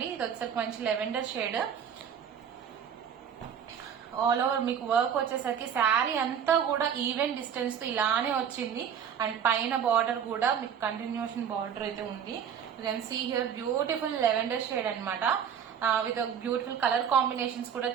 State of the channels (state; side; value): quieter; left; 8.2 dB